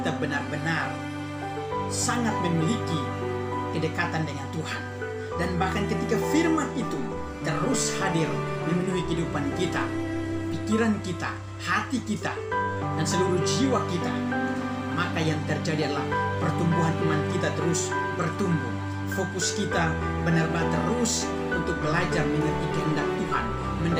benar-benar sangat memiliki kedekatan dengan Tuhan. Dan bahkan ketika firman itu terus hadir memenuhi kehidupan kita, pikiran kita, hati kita, dan seluruh jiwa kita, maka yang terjadi adalah pertumbuhan iman kita terus bertumbuh. Fokus kita benar-benar terus untuk belajar mengerti kehendak Tuhan,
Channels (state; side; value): identical; both; correlation 1.00